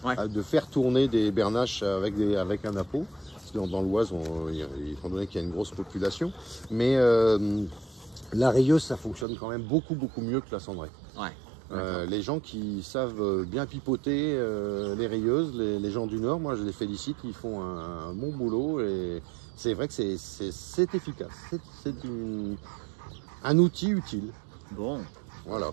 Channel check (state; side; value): drops out; left; at 9.2 s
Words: de faire tourner des bernaches avec un appôt. Parce que dans l'Oise, étant donné qu'il y a une grosse population. Mais la rayeuse, ça fonctionne quand même beaucoup mieux que la cendrée. Ouais. Les gens qui savent bien pipoter les rayeuses, les gens du Nord, moi je les félicite, ils font un bon boulot et c'est vrai que c'est efficace. C'est un outil utile. Bon. Voilà.